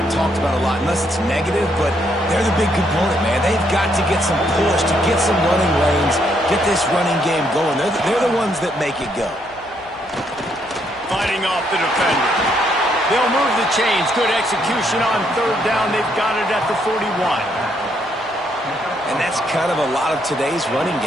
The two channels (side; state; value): both; normal; correlation 0.73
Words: talked about a lot unless it's negative, but they're the big component, man. They've got to get some push, to get some running lanes, get this running game going. They're the ones that make it go. Fighting off the defender. They'll move the chains. Good execution on 3rd down. They've got it at the 41. And that's kind of a lot of today's running